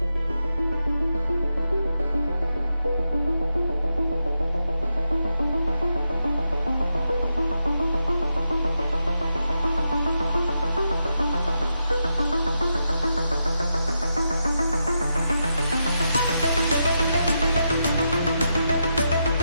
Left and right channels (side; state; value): both; inverted; correlation -0.85